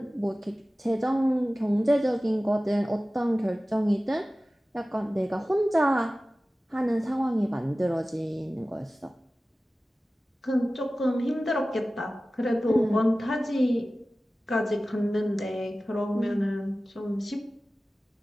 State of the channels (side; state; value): both; normal; correlation 0.96